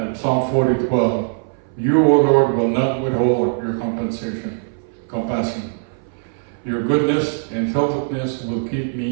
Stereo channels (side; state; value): left; silent; 62 dB below the other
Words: Psalm 40:12. You, O Lord, will not withhold your compassion. Your goodness and faithfulness will keep